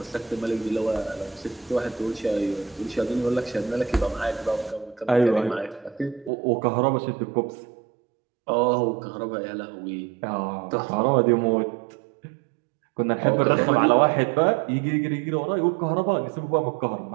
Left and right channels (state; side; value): drops out; left; at 6.3 s